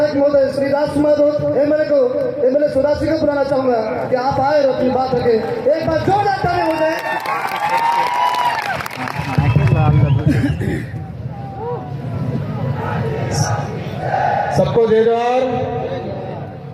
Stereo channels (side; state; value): both; identical; correlation 1.00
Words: महोदय श्री राजकुमार एमएलए सुदासी को बुलाना चाहूंगा कि आप आए और अपनी बात रखें। एक बार जोरदार ताली हो जाए। सबको जय जोहार।